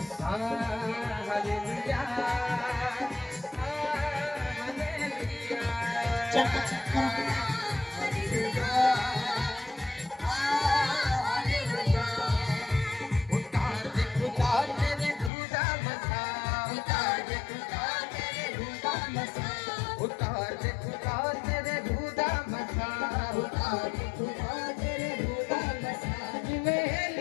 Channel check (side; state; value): right; drops out; at 15.3 s